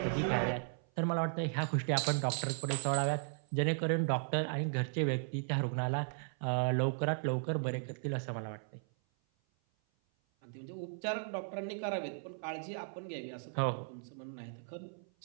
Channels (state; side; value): silent; left; 54 dB below the other